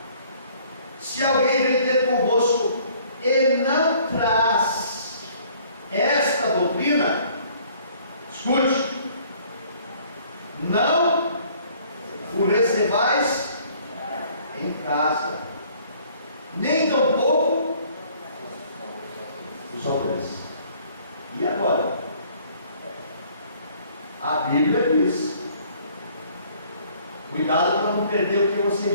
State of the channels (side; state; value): both; inverted; correlation -0.57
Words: Se alguém vem ter convosco e não traz esta doutrina, escute: não o recebais em casa, nem tampouco os aldeões. E agora? A Bíblia diz: cuidado para não perder o que